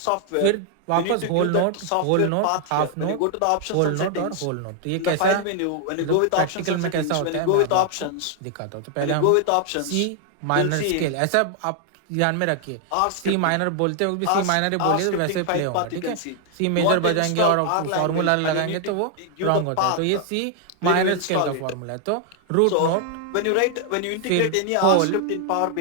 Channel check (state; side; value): different; both; correlation 0.00